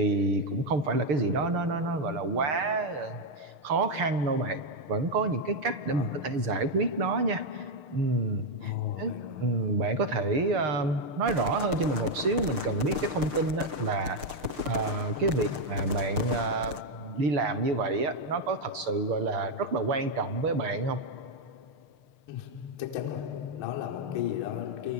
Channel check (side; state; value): left; late; 6.7 ms